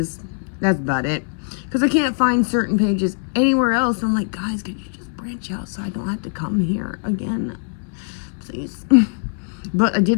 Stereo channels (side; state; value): right; silent; 57 dB below the other